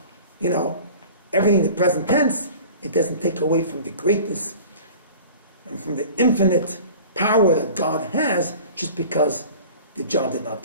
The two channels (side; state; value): both; inverted; correlation -0.42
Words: everything in the present tense. It doesn't take away from the greatness and from the infinite power that God has just because the job did not